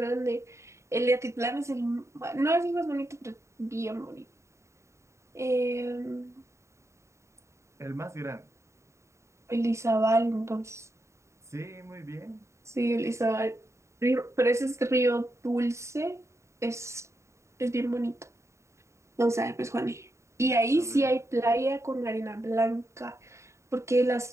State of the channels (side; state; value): left; late; 0.14 ms